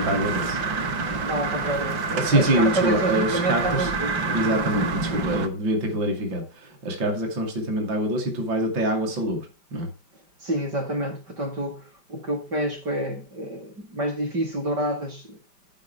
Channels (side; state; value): left; late; 5.1 ms